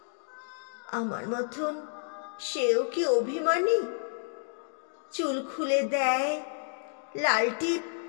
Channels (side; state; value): right; silent; digital silence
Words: আমার মতন সেও কি অভিমানী? চুল খুলে দেয়, লাল টিপ